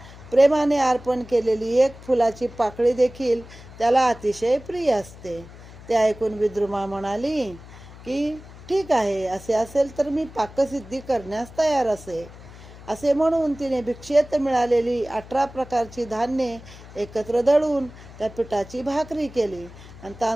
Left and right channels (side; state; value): left; noise; hum, 18 dB below the sound